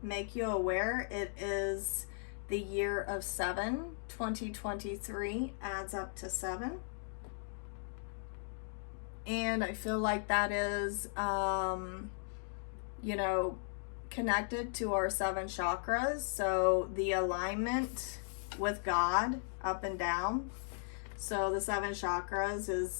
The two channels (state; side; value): silent; right; digital silence